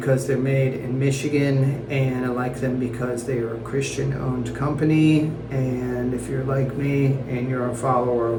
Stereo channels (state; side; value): identical; both; correlation 1.00